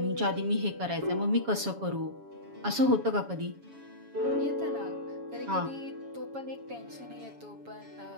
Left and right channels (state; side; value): late; left; 7.2 ms